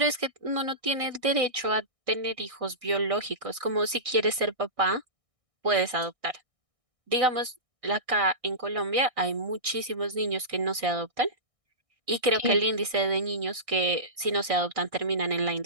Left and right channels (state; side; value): late; left; 1.6 ms